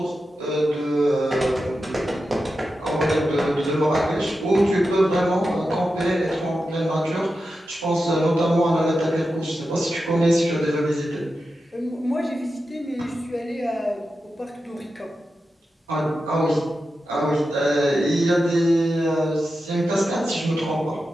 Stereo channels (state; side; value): normal; both; correlation 0.90